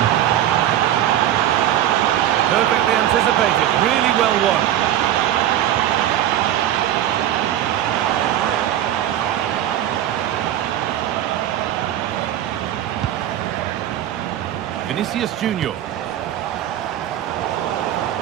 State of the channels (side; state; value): left; quieter; 11.9 dB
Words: Perfectly anticipated, really well won. Vinicius Junior.